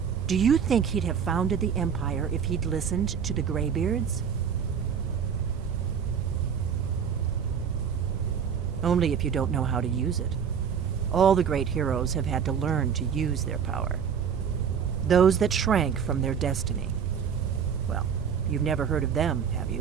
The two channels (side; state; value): left; quieter; 7.3 dB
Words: Do you think he'd have founded the Empire if he'd listened to the Greybeards? Only if you don't know how to use it. All the great heroes have had to learn to use their power. Those that shrank from their destiny. Well, you've never heard of them, have